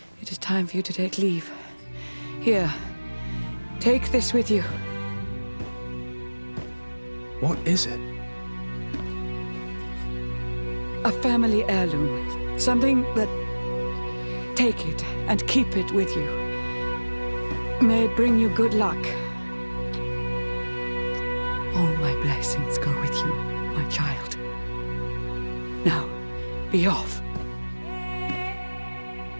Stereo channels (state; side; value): inverted; both; correlation -1.00